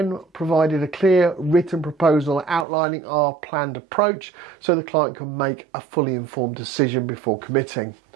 provided a clear written proposal outlining our planned approach so the client can make a fully informed decision before committing.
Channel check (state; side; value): drops out; left; at 2.7 s